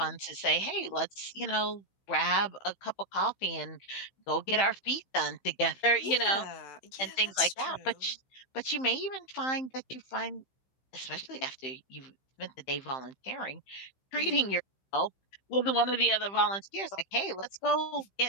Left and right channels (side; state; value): right; late; 15 ms